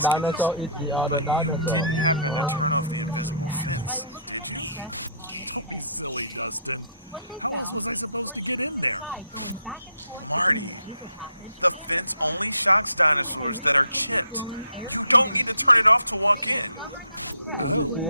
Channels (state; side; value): inverted; both; correlation -0.62